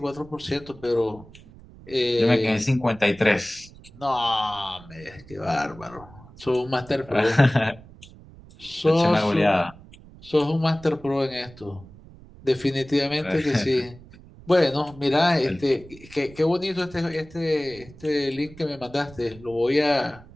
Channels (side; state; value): right; noise; rumble, 21 dB below the sound